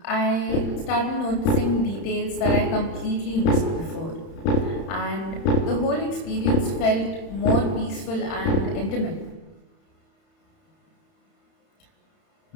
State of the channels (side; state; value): right; late; 31 ms